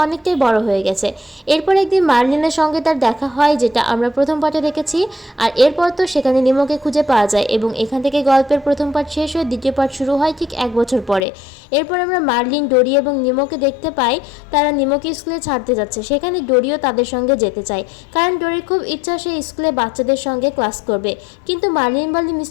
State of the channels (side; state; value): right; drops out; at 11.2 s